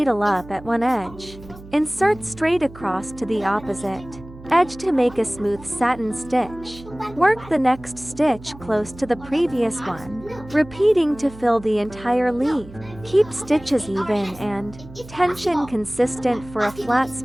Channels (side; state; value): right; noise; hum, 17 dB below the sound